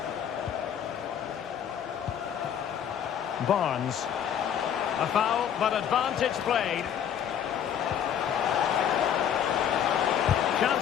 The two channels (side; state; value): right; quieter; 9.0 dB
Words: Barnes. A foul, but advantage played.